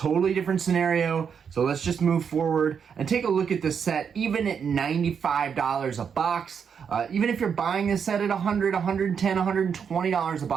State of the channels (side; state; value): left; quieter; 7.0 dB